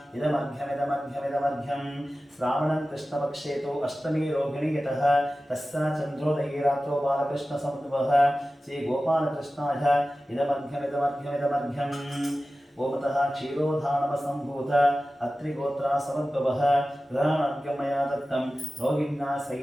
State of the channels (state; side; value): normal; both; correlation 0.95